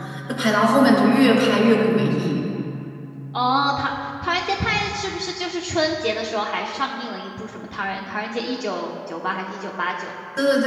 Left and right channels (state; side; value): identical; both; correlation 1.00